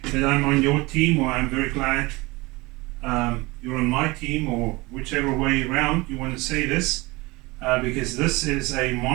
that I'm on your team, or I'm very glad you're on my team, or whichever way around you want to say this, because this is a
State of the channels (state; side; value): quieter; left; 23.1 dB